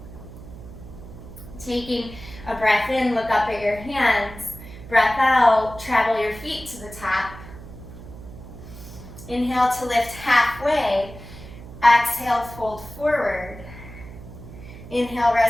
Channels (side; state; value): right; noise; hum, 15 dB below the sound